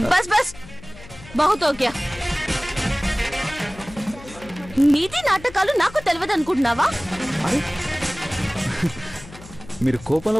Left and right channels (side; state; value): left; noise; hum, 18 dB below the sound